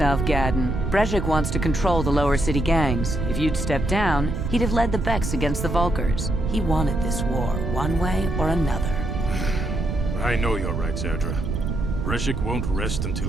Gaddon. Brejik wants to control the lower city gangs. If you'd stepped down, he'd have led the Becks against the Vulkars. He wanted this war, one way or another. I know you're right, Zerdra. Brejik won't rest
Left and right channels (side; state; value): right; noise; rumble, 2 dB below the sound